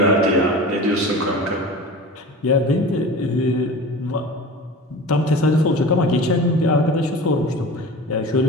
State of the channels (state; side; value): normal; both; correlation 0.35